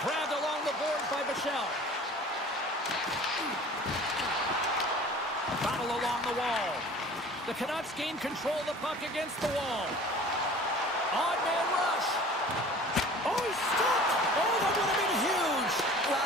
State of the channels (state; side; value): normal; both; correlation 0.45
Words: Grabbed along the boards by Michel. Battle along the wall. The Canucks gain control of the puck against the wall. Odd man rush. Oh, he's stopped. Oh, that would have been huge.